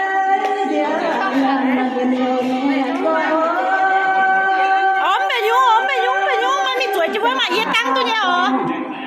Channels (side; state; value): both; identical; correlation 1.00